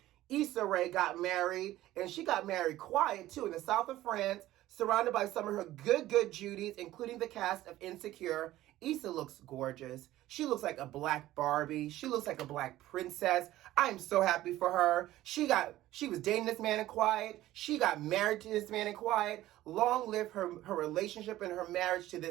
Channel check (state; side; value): quieter; left; 15.2 dB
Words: Issa Rae got married. And she got married quiet too, in the south of France, surrounded by some of her good Judies, including the cast of Insecure. Issa looks gorgeous. She looks like a black Barbie. She looks like a black princess. I'm so happy for her. She was dating this man in quiet. She got married to this man in quiet. Long live her relationship and her marriage to